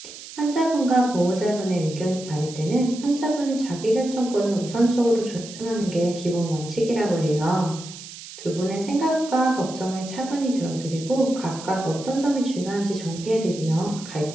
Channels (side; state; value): right; noise; hiss, 14 dB below the sound